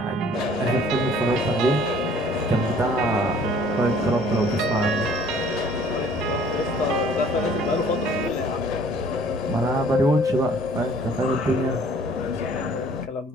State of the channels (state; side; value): normal; both; correlation 0.55